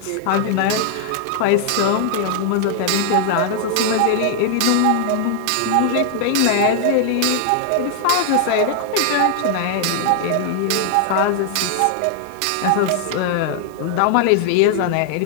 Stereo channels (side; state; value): both; different; correlation 0.00